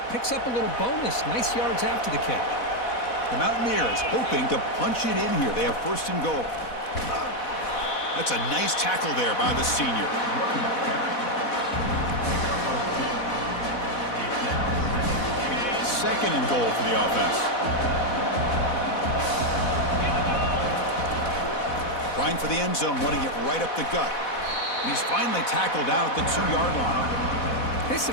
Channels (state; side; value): late; right; 4.1 ms